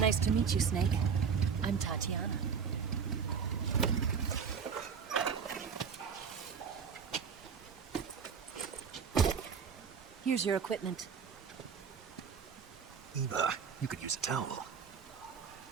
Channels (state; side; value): quieter; left; 6.4 dB